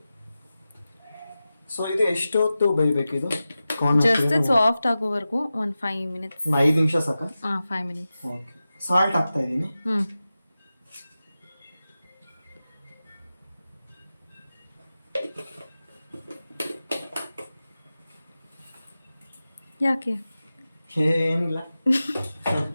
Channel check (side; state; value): both; inverted; correlation -0.94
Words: ಸೊ ಇದು ಎಷ್ಟೊತ್ತು ಬೇಯಬೇಕು ಇದು? ಜಸ್ಟ್ ಸಾಫ್ಟ್ ಆಗೋವರೆಗೂ ಒಂದು 5 ಮಿನಿಟ್ಸ್. 5 ನಿಮಿಷ ಸಾಕ? 5 ಮಿನಿಟ್ಸ್. ಓಕೆ, ಸಾಲ್ಟ್ ಹಾಕ್ತಾ ಇದ್ದೀನಿ. ಯಾಕೆ? ಏನಿಲ್ಲ.